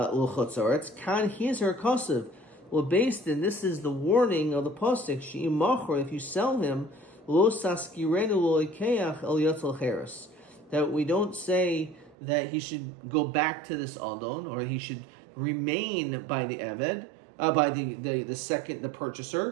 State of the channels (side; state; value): left; drops out; at 12.2 s